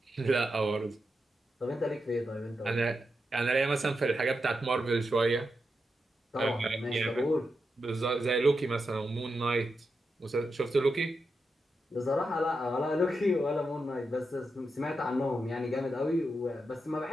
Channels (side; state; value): both; normal; correlation 0.87